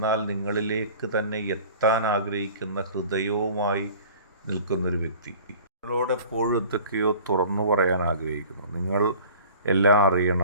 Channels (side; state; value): both; inverted; correlation -0.45